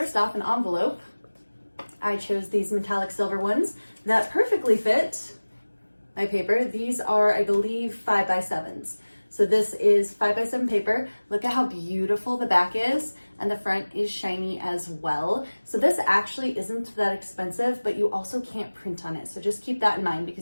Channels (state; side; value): inverted; both; correlation -1.00